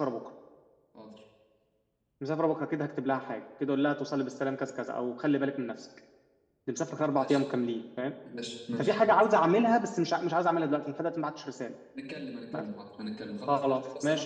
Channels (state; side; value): identical; both; correlation 1.00